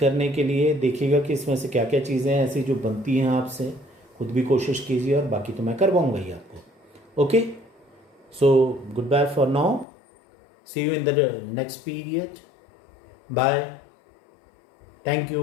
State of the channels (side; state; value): right; drops out; at 9.9 s